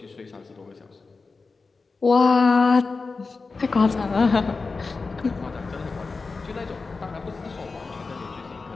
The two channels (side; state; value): right; quieter; 4.2 dB